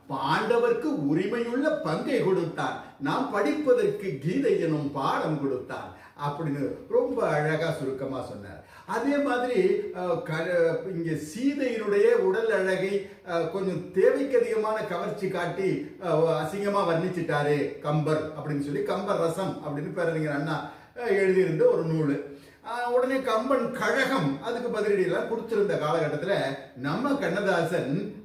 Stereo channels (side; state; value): both; identical; correlation 1.00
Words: பாண்டவர்க்கு உரிமையுள்ள பங்கை கொடுத்தான், நாம் படிப்பதற்கு கீதை எனும் பாடம் கொடுத்தான் அப்படின்னு ரொம்ப அழகா சுருக்கமா சொன்னார். அதே மாதிரி இங்க சீதையினுடைய உடல் அழகை கொஞ்சம் தேவைக்கு அதிகமான கவர்ச்சி காட்டி அசிங்கமா வர்ணிச்சிட்டாரு கம்பர் அப்படின்னு சொல்லி கம்பர் ரசம் அப்படின்னு பேரறிஞர் அண்ணா எழுதியிருந்த ஒரு நூல். உடனே கம்பன் கழகம் அதுக்கு பதிலடியெல்லாம் கொடுத்திருந்த காலகட்டத்தில் நம்ம கண்ணதாசன்